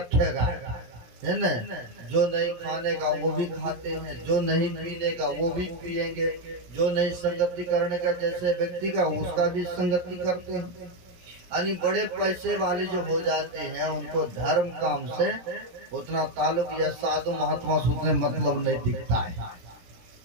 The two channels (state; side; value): late; left; 17 ms